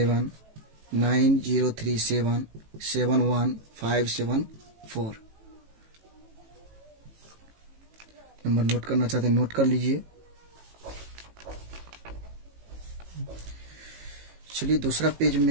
नंबर नोट करना चाहते हैं नोट कर लीजिए। चलिए दूसरा पेज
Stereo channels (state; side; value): late; left; 18 ms